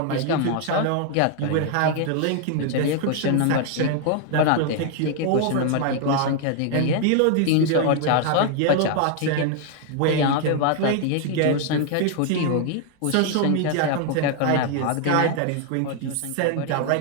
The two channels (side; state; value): both; different; correlation 0.00